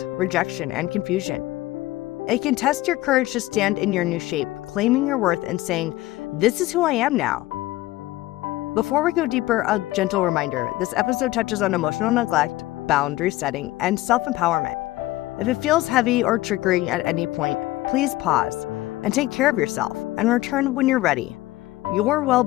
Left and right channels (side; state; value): right; quieter; 17.5 dB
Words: rejection, and confusion. It can test your courage to stand in your new shape, claiming your worth and saying, "This is who I am now." Before we go deeper, a gentle reminder: this episode touches on emotional neglect, boundary setting, and self-empowerment. If it feels heavy or triggering at any point, please pause and take care of yourself and return when you're ready. Your